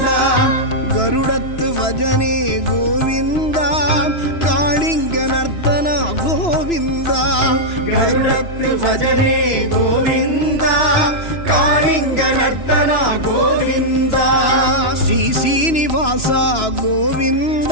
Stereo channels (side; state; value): right; late; 3.0 ms